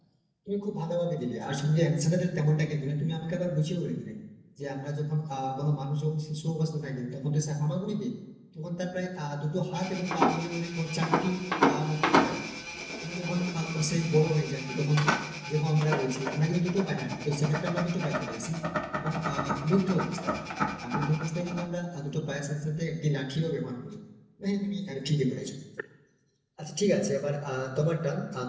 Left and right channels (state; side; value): identical; both; correlation 1.00